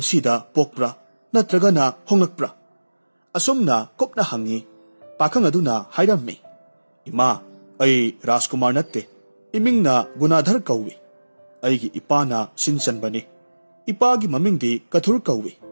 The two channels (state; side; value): inverted; both; correlation -1.00